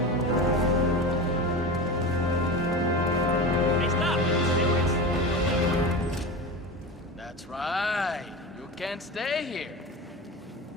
That's right. You can't stay here.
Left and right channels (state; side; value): normal; both; correlation 0.27